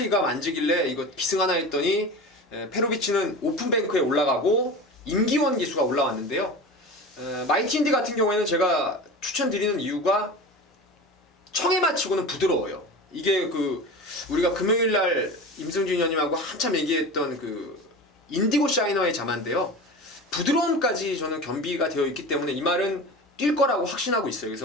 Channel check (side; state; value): both; normal; correlation 0.31